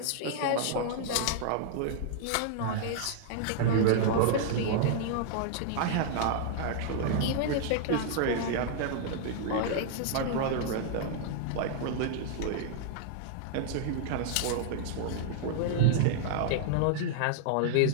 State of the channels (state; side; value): different; both; correlation -0.01